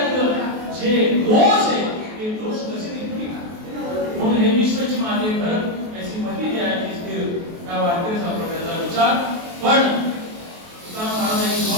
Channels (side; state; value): left; late; 23 ms